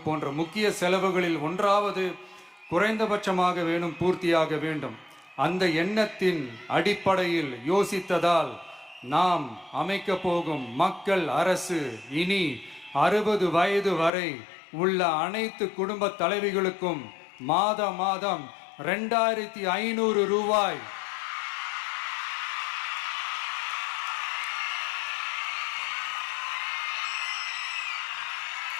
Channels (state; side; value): drops out; right; at 14.1 s